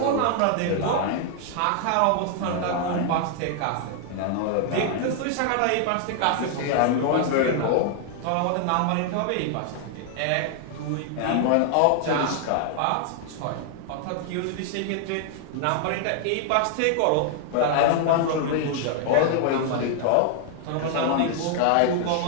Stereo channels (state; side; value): different; both; correlation 0.00